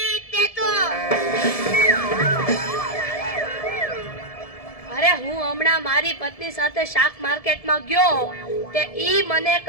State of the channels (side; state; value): right; late; 1.7 ms